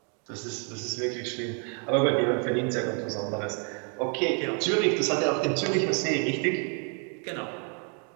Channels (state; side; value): quieter; left; 39.2 dB